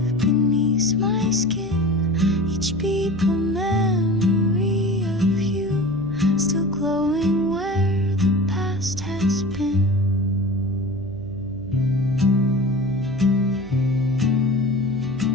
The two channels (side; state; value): right; noise; hum, 17 dB below the sound